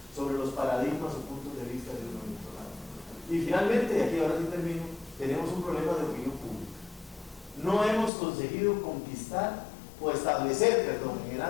sobre los paradigmas o puntos de vista de uno y otro lado. Y finalmente, y aquí ahora sí termino, tenemos un problema de opinión pública. No hemos conseguido conquistar o establecer, en el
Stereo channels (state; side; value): drops out; right; at 8.1 s